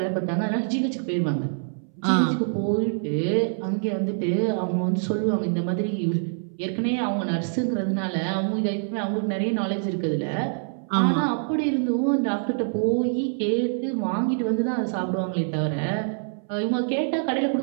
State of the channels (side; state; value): left; silent; 61 dB below the other